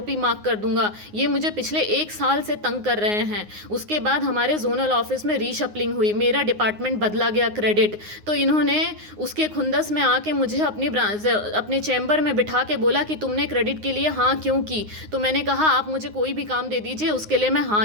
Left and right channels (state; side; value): late; left; 9.6 ms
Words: मार्क कर दूंगा। ये मुझे पिछले 1 साल से तंग कर रहे हैं। उसके बाद हमारे जोनल ऑफिस में रीशफलिंग हुई, मेरा डिपार्टमेंट बदला गया क्रेडिट, तो इन्होंने उसके खुंदस में आके मुझे अपने चैम्बर में बिठा के बोला कि तुमने क्रेडिट के लिए हाँ क्यों की। तो मैंने कहा आप मुझे कोई भी काम दे दीजिए, उसके लिए मैं हाँ